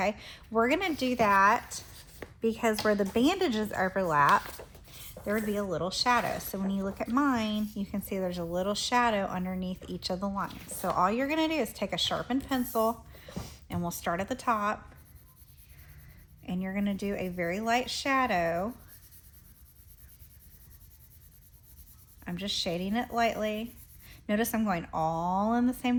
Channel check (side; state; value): both; identical; correlation 1.00